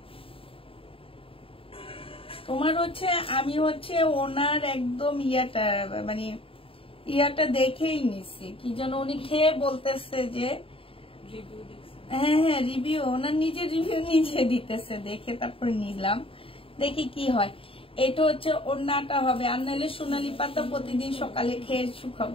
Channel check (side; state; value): right; late; 0.27 ms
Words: তোমার হচ্ছে আমি হচ্ছে ওনার একদম মানে ইয়াটা দেখেই নিছি, কি যেন উনি খেয়ে বলতেছে যে হ্যাঁ হ্যাঁ রিভিউ, ওনার নিজের রিভিউ নিজে দিতেছে, দেখে তারপর নিলাম, দেখি কি হয়। এটা হচ্ছে ওড়নাটা হবে, আর নাহলে সোনালী পাতা প্রতিদিন সকালে খেয়ে